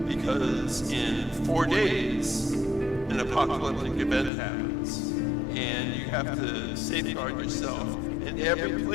because in 4 days an apocalyptic event happens, and you have to safeguard yourself. And every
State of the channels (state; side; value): drops out; right; at 4.3 s